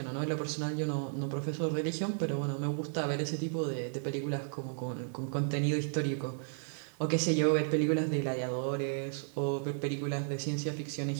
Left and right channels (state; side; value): silent; left; digital silence